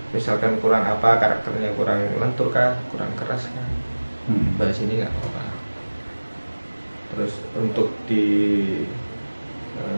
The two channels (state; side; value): inverted; both; correlation -1.00